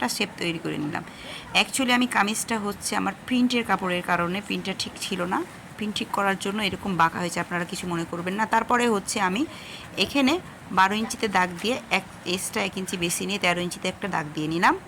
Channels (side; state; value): both; identical; correlation 1.00